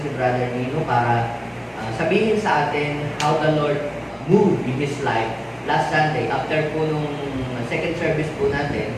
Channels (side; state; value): both; identical; correlation 1.00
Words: si Brother Nino para sabihin sa atin how the Lord moved in His life. Last Sunday, after po nung second service po natin,